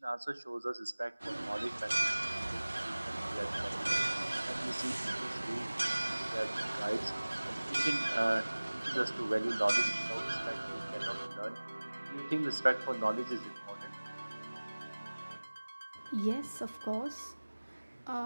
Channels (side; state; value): both; inverted; correlation -1.00